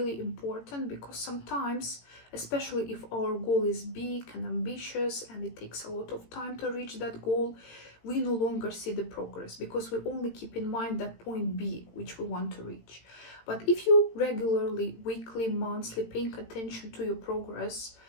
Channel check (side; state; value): right; late; 18 ms